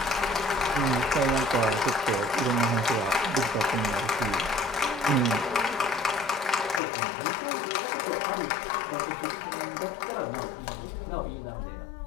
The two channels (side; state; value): right; drops out; at 6.8 s